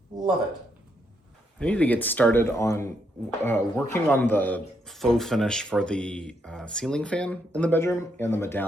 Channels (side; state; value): both; normal; correlation 0.77